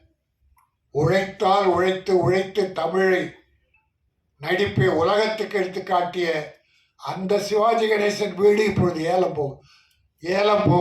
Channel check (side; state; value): both; identical; correlation 1.00